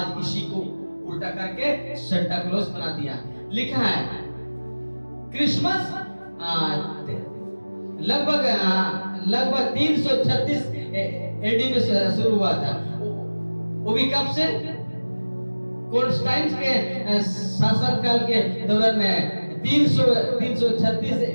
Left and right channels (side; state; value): both; inverted; correlation -1.00